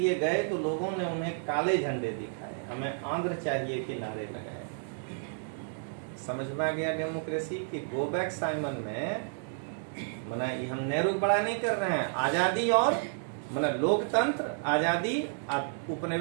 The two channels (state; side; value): silent; left; digital silence